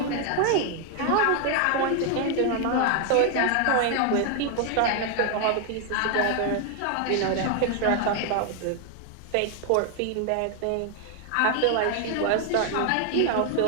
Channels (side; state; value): both; different; correlation 0.00